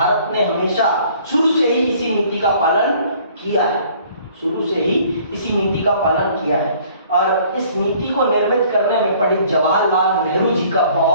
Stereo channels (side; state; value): both; inverted; correlation -0.56